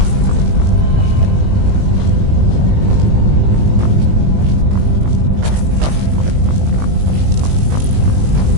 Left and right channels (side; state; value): left; late; 19 ms